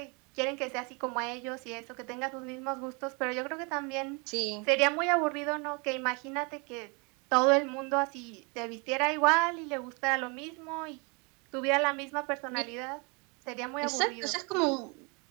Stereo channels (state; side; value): quieter; left; 31.8 dB